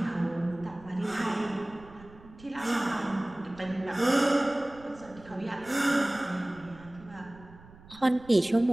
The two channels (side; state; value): right; noise; rumble, 21 dB below the sound